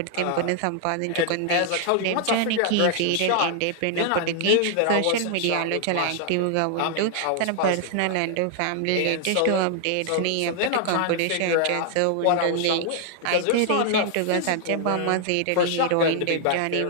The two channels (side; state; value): both; different; correlation 0.00